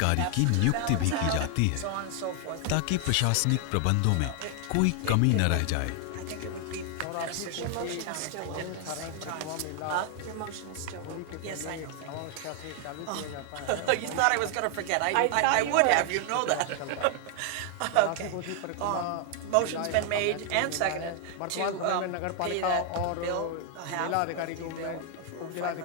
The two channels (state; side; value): different; both; correlation 0.00